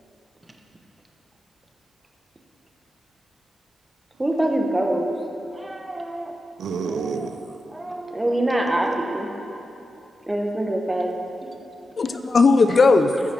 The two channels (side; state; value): both; normal; correlation 0.90